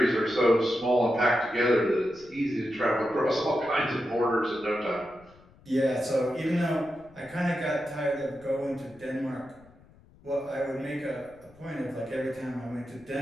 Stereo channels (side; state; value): left; noise; rumble, 26 dB below the sound